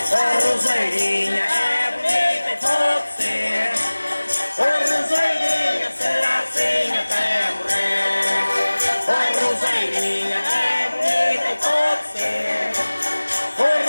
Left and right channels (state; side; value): inverted; both; correlation -1.00